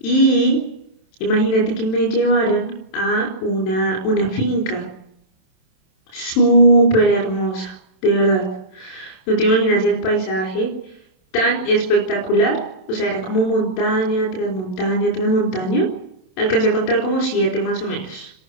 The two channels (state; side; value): late; right; 27 ms